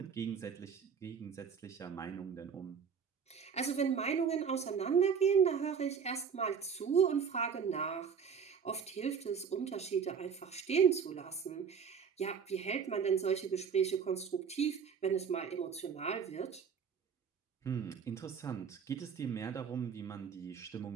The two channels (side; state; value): left; quieter; 6.6 dB